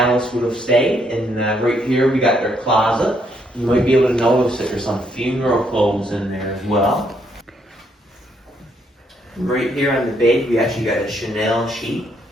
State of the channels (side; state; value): both; normal; correlation 0.73